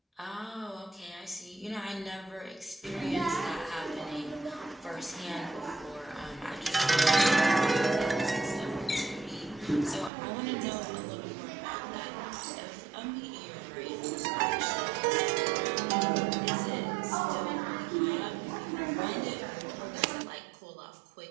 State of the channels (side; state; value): left; drops out; at 10.1 s